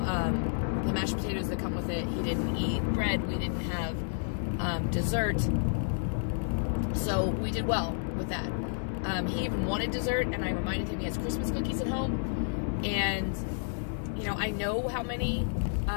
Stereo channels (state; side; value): silent; right; digital silence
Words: mashed potatoes that come with it. He didn't eat bread. We didn't have dessert. So we did well with that. He even wanted dessert, and I reminded him he has Christmas cookies at home. And, you know, I know how many